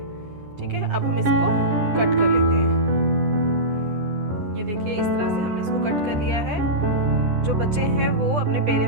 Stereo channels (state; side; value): late; left; 9.9 ms